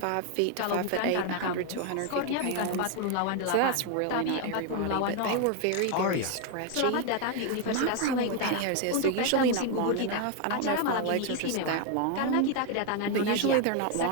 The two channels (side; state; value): both; different; correlation 0.01